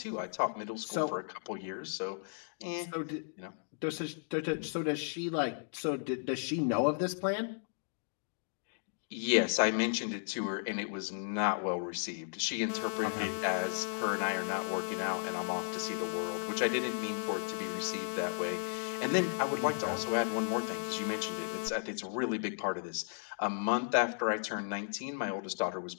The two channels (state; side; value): silent; right; digital silence